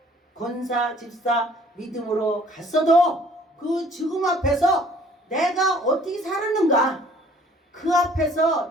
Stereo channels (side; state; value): both; normal; correlation 0.56